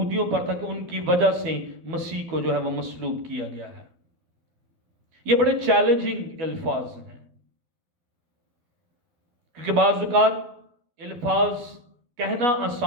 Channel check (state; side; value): late; left; 12 ms